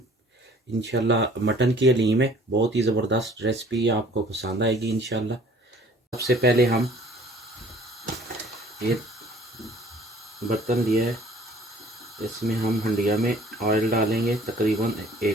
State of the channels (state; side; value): normal; both; correlation 0.53